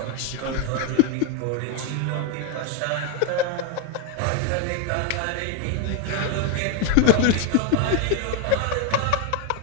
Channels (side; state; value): both; different; correlation 0.01